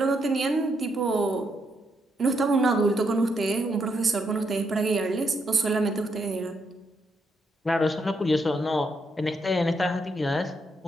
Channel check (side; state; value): both; normal; correlation 0.78